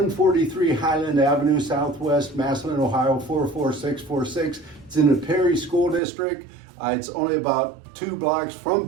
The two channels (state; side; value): drops out; left; at 6.0 s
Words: Highland Avenue Southwest, Massillon, Ohio 44646. It's in the Perry School District. It's only about 2 blocks from